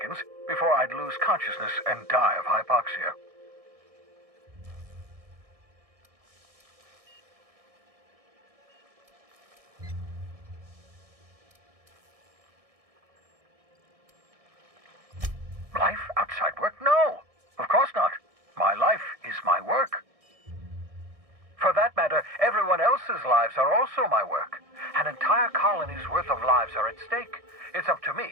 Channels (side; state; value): left; late; 1.6 ms